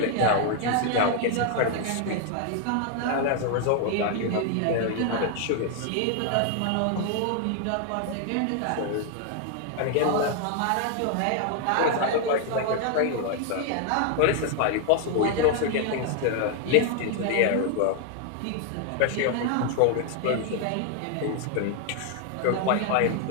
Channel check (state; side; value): different; both; correlation 0.00